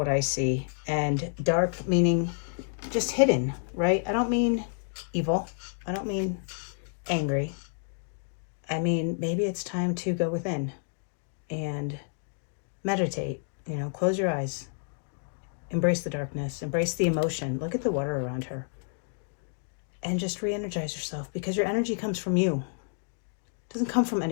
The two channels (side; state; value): right; silent; digital silence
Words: I see. And dark meaning just hidden, right? I don't mean evil. I don't mean angry. I mean, maybe it's time to go within and meditate, you know, close your eyes, embrace the darkness, embrace the emotion. Look at the water around her and just re-energize yourself, because your energy comes from you. It doesn't come from